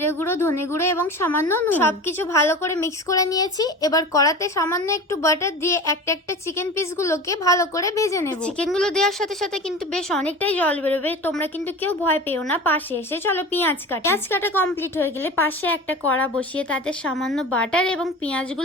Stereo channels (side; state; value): both; normal; correlation 0.33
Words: গুঁড়ো, ধনে গুঁড়ো এবং সামান্য নুন। সবকিছু ভালো করে মিক্স করে নিয়েছি। এবার কড়াতে সামান্য একটু বাটার দিয়ে একটা একটা চিকেন পিস গুলোকে ভালো করে ভেজে নেব। চিকেন গুলো দেওয়ার সাথে সাথে কিন্তু বেশ অনেকটাই জল বেরোবে, তোমরা কিন্তু কেউ ভয় পেও না। পাশে এসে চলো পেঁয়াজ কাটা কমপ্লিট হয়ে গেলে পাশে একটা কড়া বসিয়ে তাতে সামান্য বাটার এবং